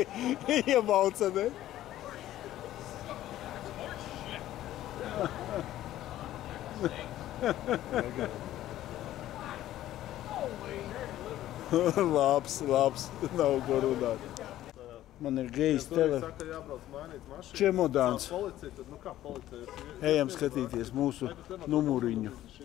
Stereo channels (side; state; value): right; quieter; 13.6 dB